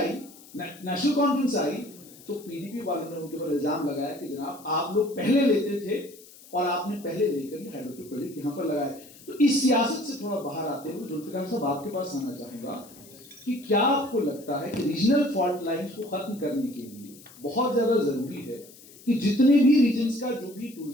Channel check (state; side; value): noise; left; hiss, 21 dB below the sound